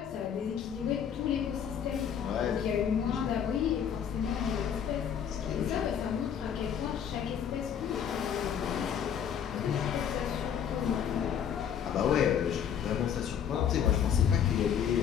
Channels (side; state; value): right; quieter; 8.4 dB